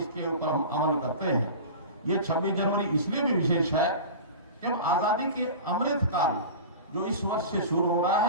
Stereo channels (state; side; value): inverted; both; correlation -0.33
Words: ऊपर हम अमल करते हैं। ये 26 जनवरी इसलिए भी विशेष है कि हम आजादी के अमृत काल जो इस वर्ष से शुरू हो रहा